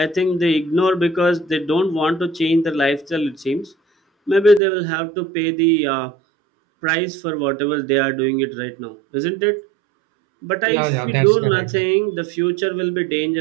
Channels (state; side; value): drops out; left; at 4.6 s